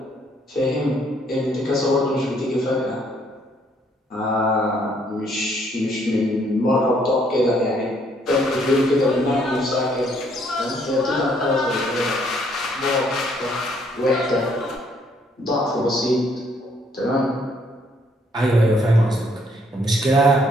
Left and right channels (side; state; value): both; normal; correlation 0.67